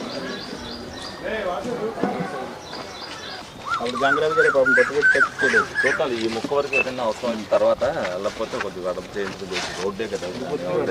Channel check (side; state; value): both; identical; correlation 1.00